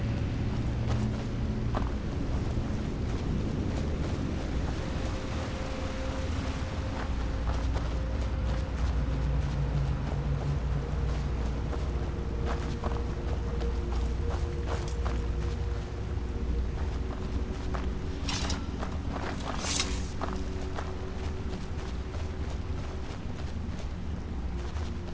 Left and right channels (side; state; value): both; identical; correlation 1.00